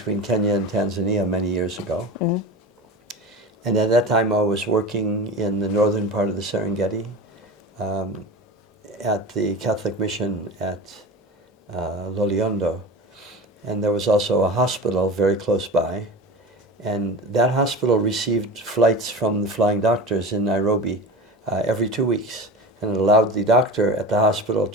Kenya and Tanzania many years ago. And at that time I was working in the northern part of the Serengeti at the Catholic mission at Loliondo. And there was also a hospital very close by. And that hospital received flights from the flying doctors in Nairobi every 2 weeks. And it allowed the doctor at the hospital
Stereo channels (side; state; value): both; normal; correlation 0.30